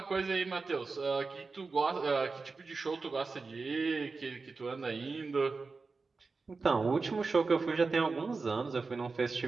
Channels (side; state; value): left; quieter; 4.2 dB